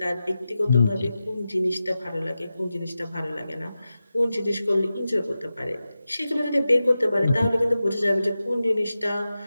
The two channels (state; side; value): inverted; both; correlation -0.93